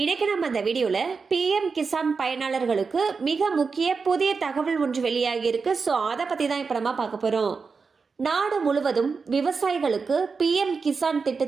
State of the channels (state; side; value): quieter; left; 4.9 dB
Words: இன்னைக்கு நம்ம இந்த வீடியோல பிஎம் கிசான் பயனாளர்களுக்கு மிக முக்கிய புதிய தகவல் ஒன்று வெளியாகி இருக்கு. ஸோ அதை பத்தி தான் இப்ப நம்ம பார்க்க போறோம். நாடு முழுவதும் விவசாயிகளுக்கு பிஎம் கிசான்